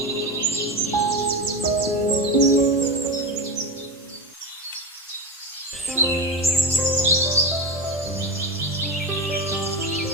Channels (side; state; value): both; normal; correlation 0.18